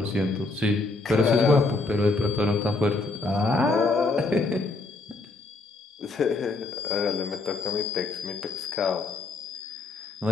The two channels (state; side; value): quieter; right; 3.4 dB